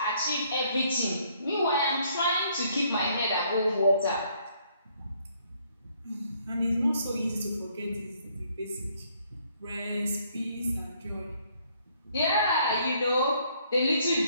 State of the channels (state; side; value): inverted; both; correlation -0.66